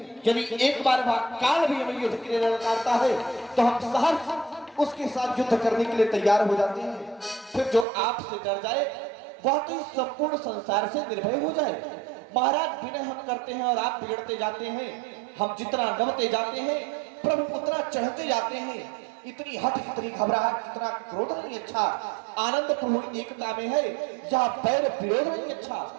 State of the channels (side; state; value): left; drops out; at 7.9 s